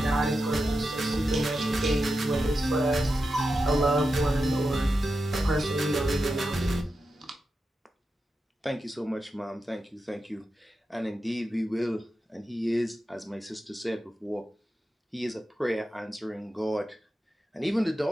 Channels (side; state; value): both; normal; correlation 0.89